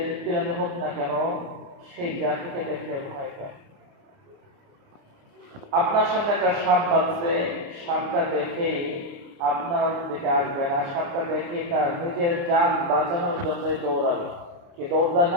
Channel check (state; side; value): late; left; 29 ms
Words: প্রাণী হোক না কেন সেই জাতিকে দেখে ভয় পায়। আপনার সামনে একটা সাপ বাঁচছে, সাপটা দেখেই আপনার দিকে আসবে না, সাপটা দেখেই তার নিজের জান বাঁচানোর জন্যই দৌড়াবে। কি দৌড়া